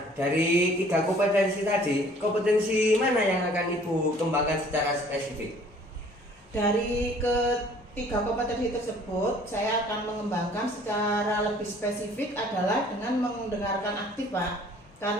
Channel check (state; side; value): normal; both; correlation 0.55